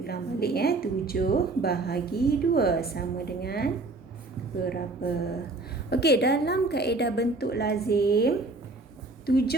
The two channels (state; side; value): quieter; left; 3.3 dB